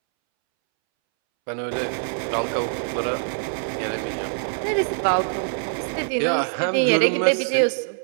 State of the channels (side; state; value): left; silent; 63 dB below the other